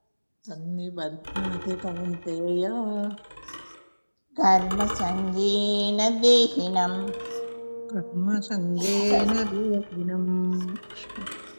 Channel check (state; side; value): inverted; both; correlation -1.00